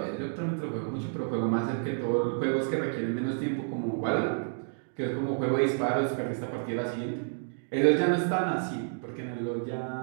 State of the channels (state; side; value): silent; left; digital silence